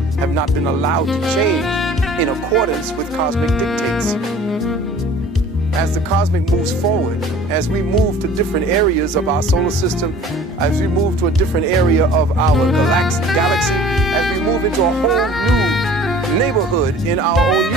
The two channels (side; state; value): both; normal; correlation 0.47